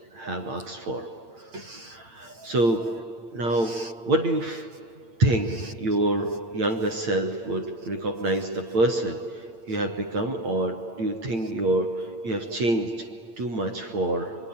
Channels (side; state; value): left; late; 8.8 ms